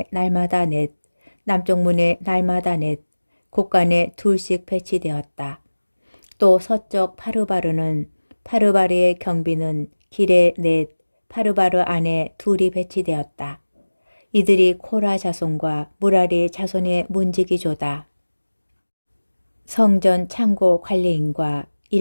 날마다 4, 남쪽 문에 날마다 4, 곡간에 2씩 배치되었다. 또 서쪽 파르바르는 파르바르의 경비는 길에 4, 파르바르 안에 2이 배치되었다. 이들이 코라 자손과 무라리 자손의 문지기조다. 성전 창고 관리인과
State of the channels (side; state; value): both; inverted; correlation -1.00